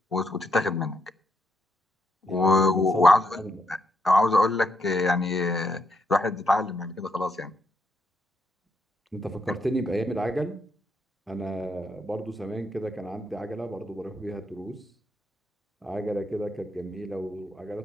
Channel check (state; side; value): normal; both; correlation 0.78